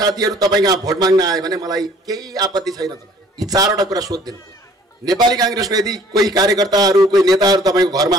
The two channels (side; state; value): both; normal; correlation 0.55